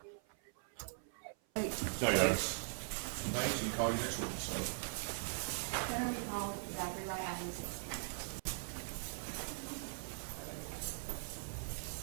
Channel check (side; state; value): left; silent; 51 dB below the other